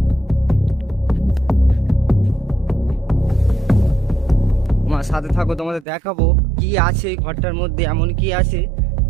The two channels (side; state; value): left; drops out; at 5.9 s